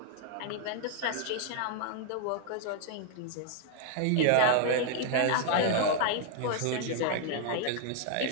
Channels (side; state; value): both; different; correlation 0.00